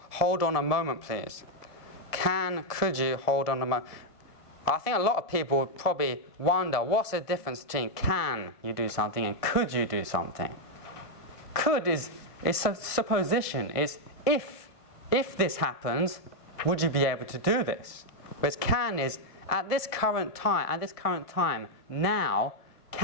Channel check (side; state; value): right; late; 1.6 ms